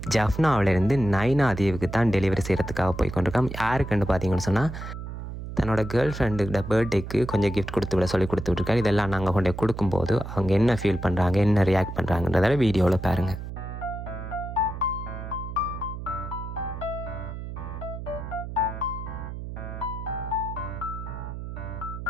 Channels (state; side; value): noise; right; hum, 8 dB below the sound